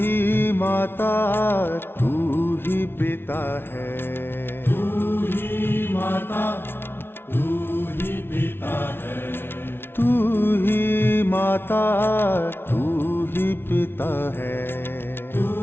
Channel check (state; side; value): late; right; 0.11 ms